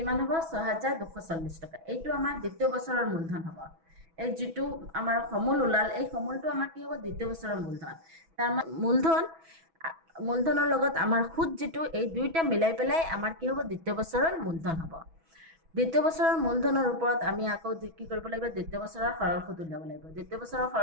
হ'ব 6240 টকা এইটো আমাৰ দ্বিতীয় বছৰৰ মূলধন হ'ব এই যেটো আমাৰ সমল উলাল এই সমলটো আমাৰ কি হ'ব দ্বিতীয় বছৰৰ মূলধন তাৰ মূলধনৰ লগত আমাৰ সুত যেটো এই দুইটা মিলাই পেলাই আমাৰ কি হ'ব দ্বিতীয় বছৰৰ মূলধন হ'ব দ্বিতীয় বছৰৰ মূলধনৰ ওপৰত আমি আকৌ কি কৰিব লাগিব দ্বিতীয় বছৰৰ সৰল সুত উলিয়াব লাগিব দ্বিতীয় বছৰৰ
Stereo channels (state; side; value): late; left; 6.1 ms